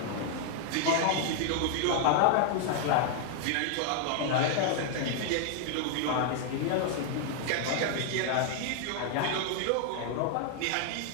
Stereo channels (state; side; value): different; both; correlation 0.00